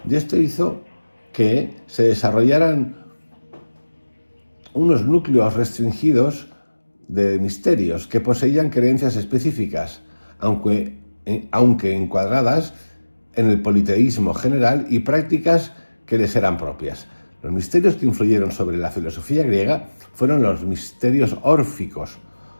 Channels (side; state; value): both; inverted; correlation -1.00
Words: y esto hizo que se desarrollaran unos núcleos restringidos de misterios que poseían creencias específicas, aunque encuadradas en el politeísmo general y prácticas que les eran propias. Los misterios que influyeron sobre la filosofía griega fueron los misterios órficos,